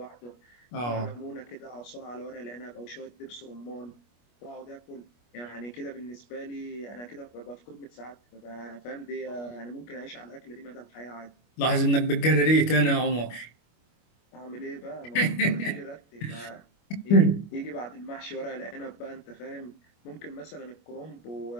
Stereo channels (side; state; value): right; late; 25 ms